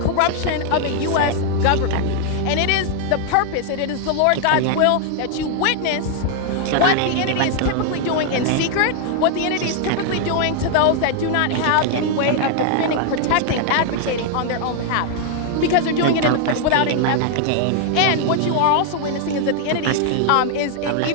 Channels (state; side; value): different; both; correlation 0.00